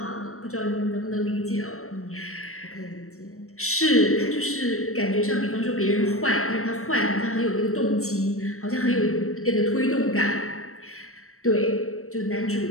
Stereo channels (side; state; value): right; late; 0.63 ms